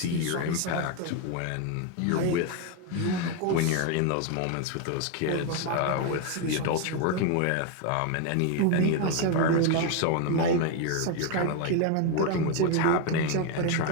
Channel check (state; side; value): different; both; correlation 0.02